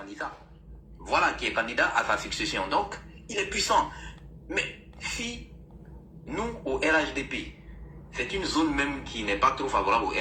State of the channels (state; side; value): identical; both; correlation 1.00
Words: Voilà, qui est candidat à sa succession. Donc, il est puissant. Mais si nous, au RHDP, c'est une zone même qui n'est pas trop favorable au